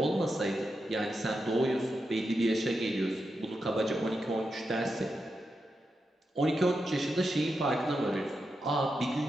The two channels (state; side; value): normal; both; correlation 0.87